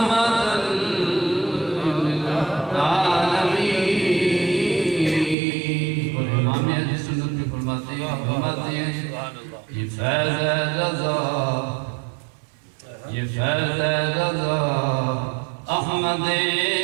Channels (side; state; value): left; drops out; at 5.4 s